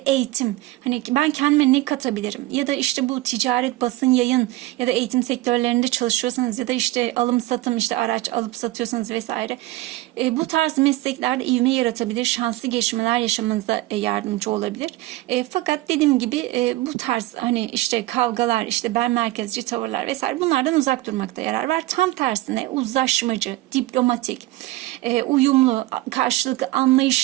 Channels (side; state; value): left; quieter; 18.0 dB